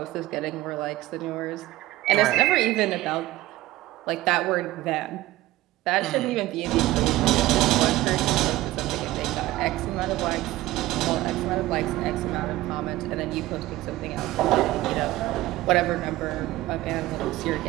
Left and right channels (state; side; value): quieter; left; 17.0 dB